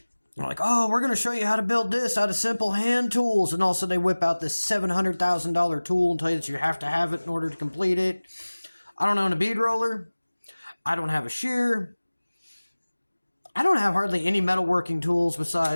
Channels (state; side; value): inverted; both; correlation -1.00